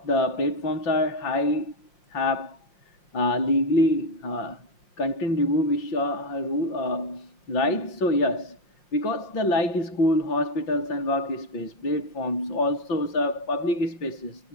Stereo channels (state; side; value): late; right; 5.6 ms